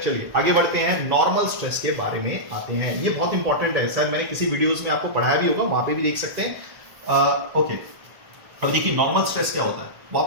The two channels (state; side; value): late; left; 1.7 ms